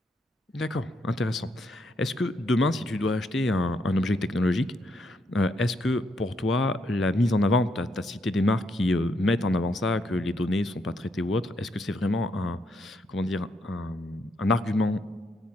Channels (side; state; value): both; normal; correlation 0.76